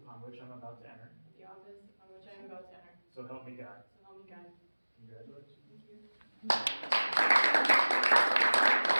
which I'm about to enter. of the office upon which I am about to enter. So help me God. So help me God. Congratulations. Thank you.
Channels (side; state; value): both; inverted; correlation -1.00